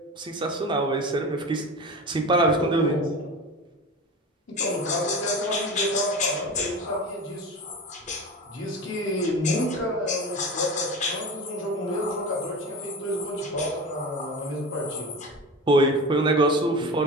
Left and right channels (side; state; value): both; normal; correlation 0.30